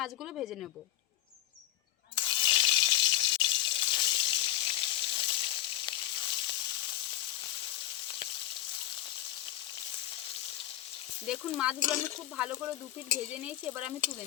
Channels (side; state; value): right; quieter; 13.8 dB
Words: ভেজে নেব। দেখুন মাছগুলো আমি খুব ভালো করে 2 পিঠ ভেজে নিয়েছি, এবার আমি তুলে